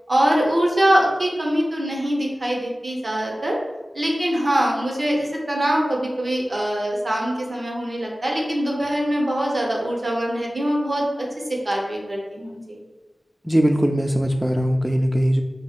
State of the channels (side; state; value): both; normal; correlation 0.96